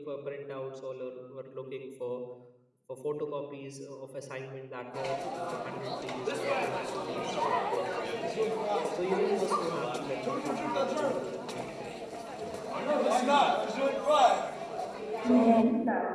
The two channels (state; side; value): identical; both; correlation 1.00